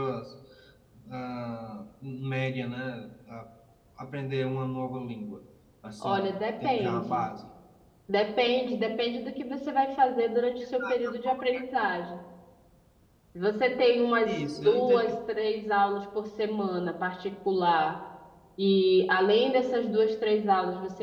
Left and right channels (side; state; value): both; identical; correlation 1.00